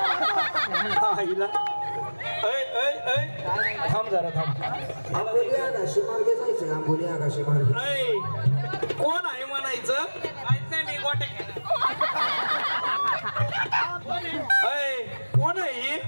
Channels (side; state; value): both; inverted; correlation -1.00